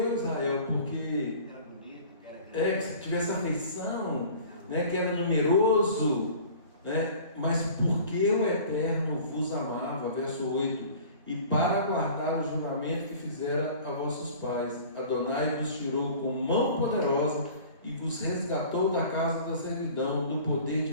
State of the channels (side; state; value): both; inverted; correlation -0.45